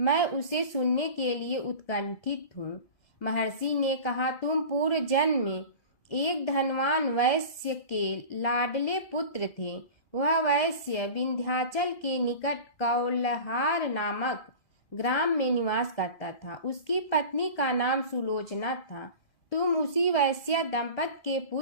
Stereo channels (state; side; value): late; right; 1.9 ms